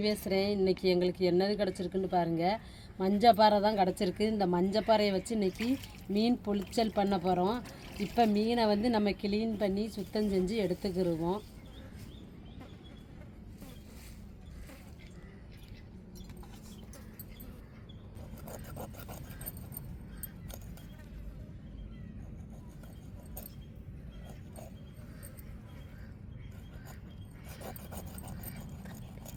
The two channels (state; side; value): identical; both; correlation 1.00